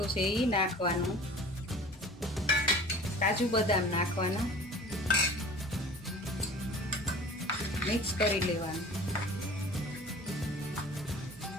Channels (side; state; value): both; normal; correlation 0.42